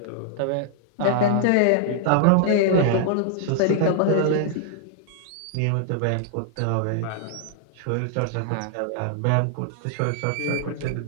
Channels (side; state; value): both; different; correlation -0.01